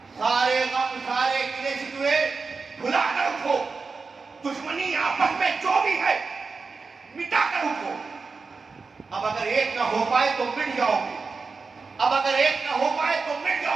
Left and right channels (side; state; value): left; quieter; 4.5 dB